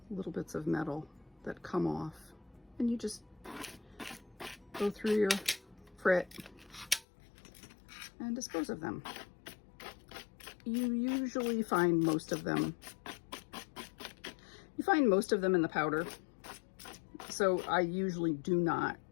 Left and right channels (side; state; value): right; drops out; at 7.1 s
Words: little bits of metal that come off. And you just go through your Frit and dispose of them. You usually find most of them. You find most of them in the powder. So I usually do not